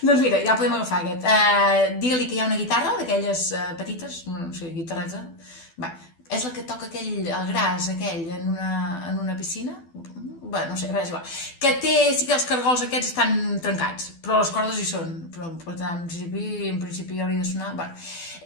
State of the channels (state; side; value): late; right; 12 ms